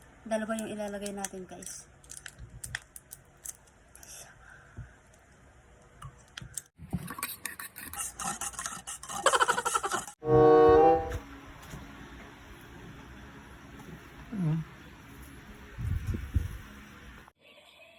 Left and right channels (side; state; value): both; identical; correlation 1.00